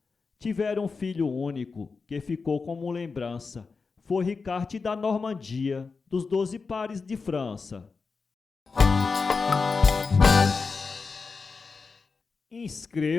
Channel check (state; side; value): quieter; right; 4.7 dB